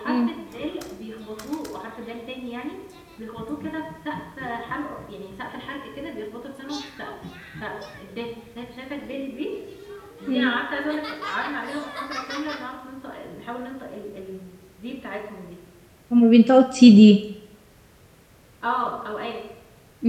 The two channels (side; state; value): both; identical; correlation 1.00